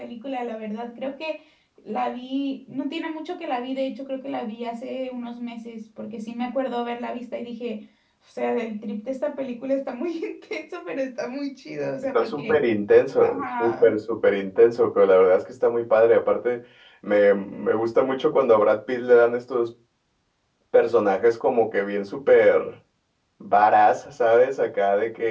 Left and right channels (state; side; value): identical; both; correlation 1.00